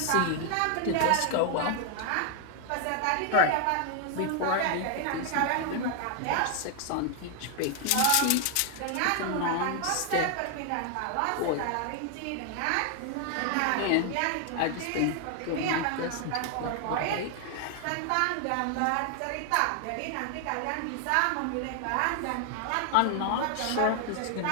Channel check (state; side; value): different; both; correlation 0.00